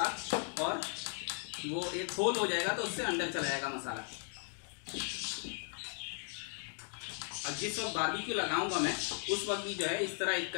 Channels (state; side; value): silent; right; 53 dB below the other